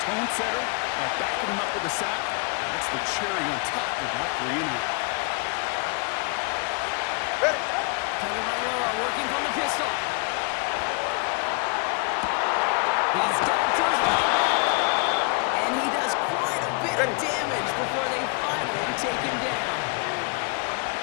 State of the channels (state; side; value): quieter; right; 33.2 dB